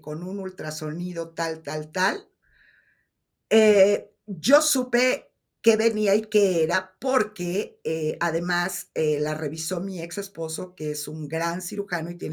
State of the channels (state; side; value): identical; both; correlation 1.00